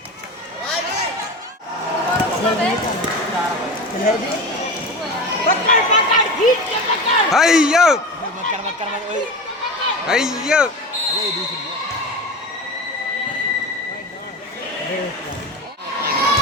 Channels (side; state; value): both; normal; correlation 0.28